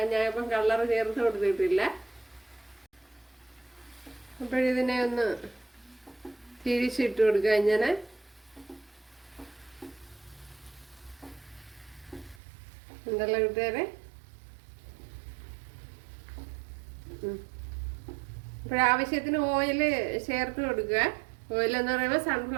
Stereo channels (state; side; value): drops out; left; at 12.4 s